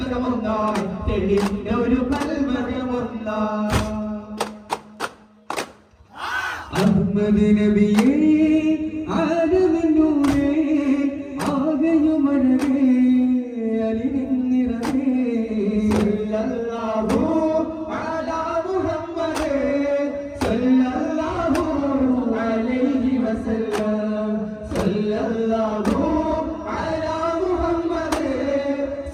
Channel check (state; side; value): identical; both; correlation 1.00